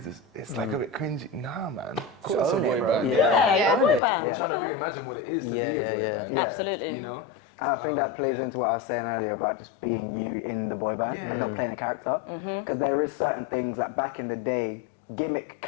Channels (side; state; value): right; drops out; at 4.0 s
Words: it's like a bit cringy. Nah, man. Call us a own it, boy bro. band. Yeah, boy band. We're trying to reimagine what it is to be a boy band. Absolutely. You know? I think that plays into what I was saying earlier about just being you in the boy band and not playing a character. Because there is certain things that back in the day, gimmick